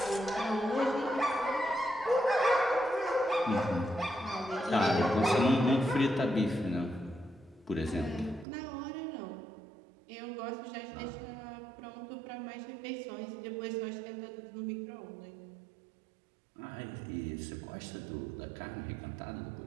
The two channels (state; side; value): drops out; left; at 8.5 s